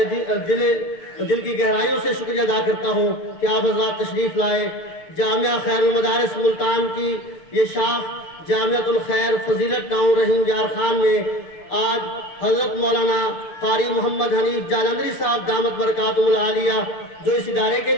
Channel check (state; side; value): late; right; 6.7 ms